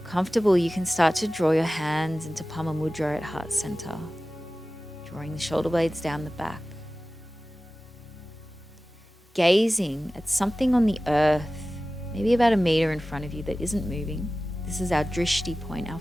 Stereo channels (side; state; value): both; normal; correlation 0.96